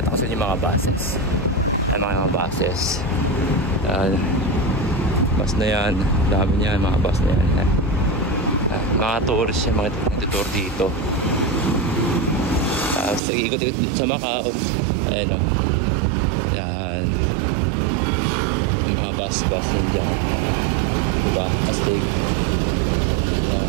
ko sa inyo mga buses. Ay mga buses. Bus na yan, dami niyan, mga bus na yan. Mga tourist yan, mga nagtutour dito. Sa ikot-ikot sa Macau. Ayan o. Yan. Yung mga bus yan dyan. Diba? Astig.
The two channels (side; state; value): left; drops out; at 13.2 s